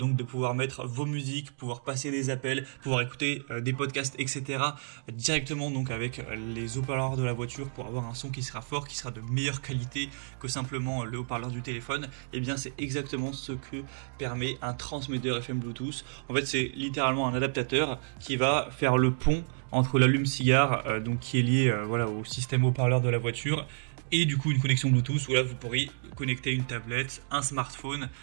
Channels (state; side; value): silent; left; digital silence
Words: de pouvoir mettre vos musiques, pouvoir passer des appels, pouvoir écouter des podcasts, etc. directement donc avec les haut-parleurs de la voiture pour avoir un son qui sera fort, qui sera de meilleure qualité que simplement le haut-parleur du téléphone. Et bien c'est exactement ce que permet un transmetteur FM Bluetooth. En fait c'est littéralement un adaptateur qui va faire le pont entre l'allume-cigare donc qui est lié au système haut-parleur de la voiture et du coup une connexion Bluetooth où là vous pourrez connecter une tablette, un smartphone,